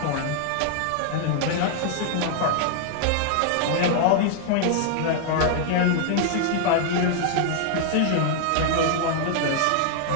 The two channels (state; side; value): different; both; correlation 0.00